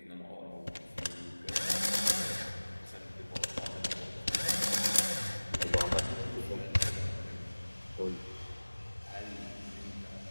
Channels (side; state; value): both; inverted; correlation -1.00